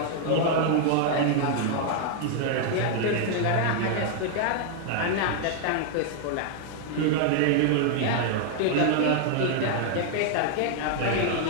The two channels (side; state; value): both; different; correlation 0.00